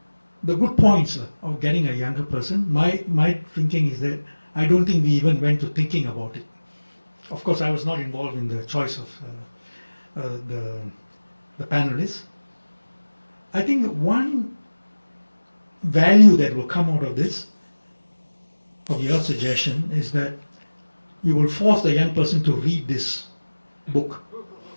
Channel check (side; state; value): both; inverted; correlation -1.00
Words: good points of getting a younger person. My thinking is that I don't think we even went to thinking about it. Of course, I was not involved in the choice of the panelists. I think one value that will come out of this, of your suggestion, is that you will force the young person to read this book.